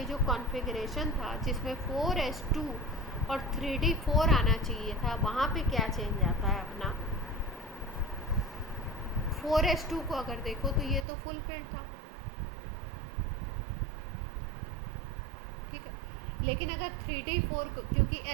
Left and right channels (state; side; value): drops out; left; at 11.1 s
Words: जो कॉन्फ़िगरेशन था जिसमें 4s2 और 3d4 आना चाहिए था, वहाँ पे क्या चेंज आता है अपना? 4s2 को अगर देखो तो ये तो फुल फील्ड था, ठीक है, लेकिन अगर 3d4 को, क्योंकि